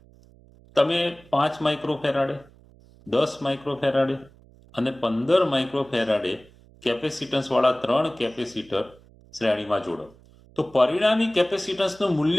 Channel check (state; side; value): noise; right; hum, 26 dB below the sound